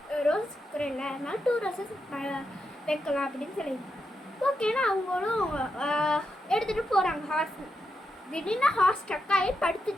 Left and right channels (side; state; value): both; normal; correlation 0.85